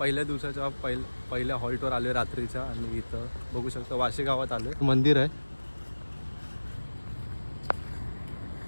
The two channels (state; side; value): inverted; both; correlation -1.00